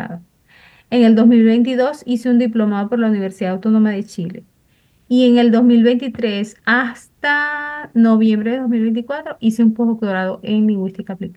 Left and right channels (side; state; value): both; identical; correlation 1.00